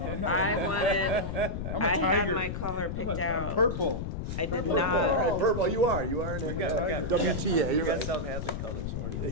I'm not- I wanted, I'm a I had tiger. my color I'm picked a- out. Purple. I did Purple, all not, right, purple, you are in it. got- WTA, You you're got right. South Hadley colors, orange and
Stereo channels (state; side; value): noise; left; rumble, 4 dB below the sound